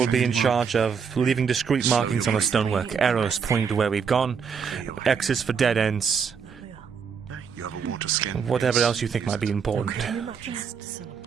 be in charge of leaving discreet markings on the stonework, arrows pointing to where we've gone, X's for dead ends, You have a water skin. whatever else you think might be important.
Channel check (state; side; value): quieter; left; 6.4 dB